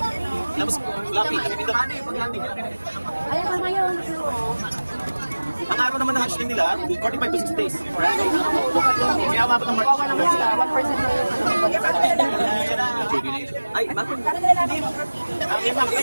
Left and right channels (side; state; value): both; inverted; correlation -1.00